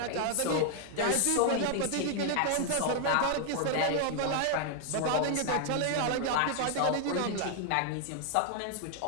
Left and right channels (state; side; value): different; both; correlation 0.00